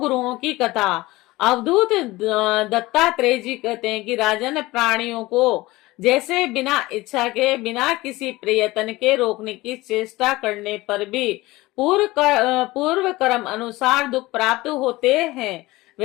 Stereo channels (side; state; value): right; quieter; 19.7 dB